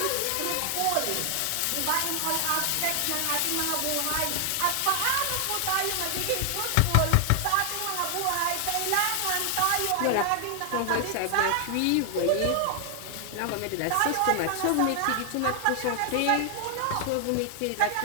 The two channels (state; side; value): different; both; correlation 0.00